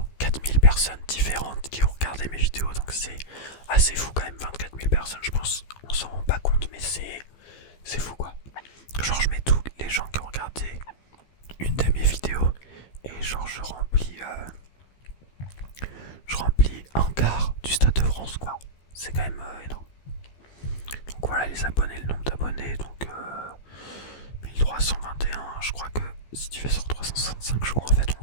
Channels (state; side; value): late; right; 15 ms